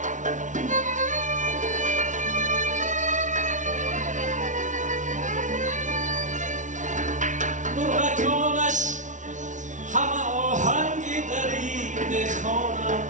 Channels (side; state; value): left; late; 0.37 ms